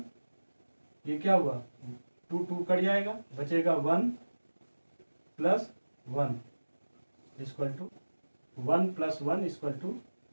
ये क्या हुआ 2 कट जाएगा, बचेगा 1 plus 1 equal to 1 plus 1 equal to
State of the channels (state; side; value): inverted; both; correlation -1.00